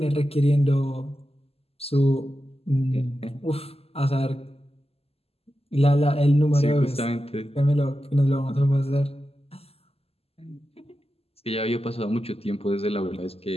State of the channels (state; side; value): late; right; 0.29 ms